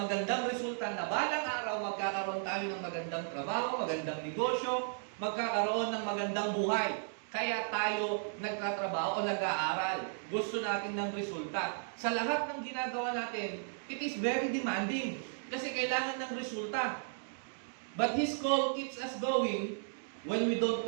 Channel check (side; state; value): left; silent; digital silence